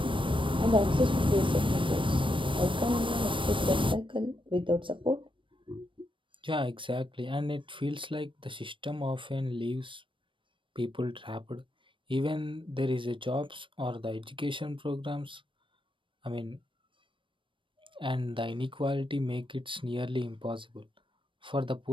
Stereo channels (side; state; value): left; late; 0.25 ms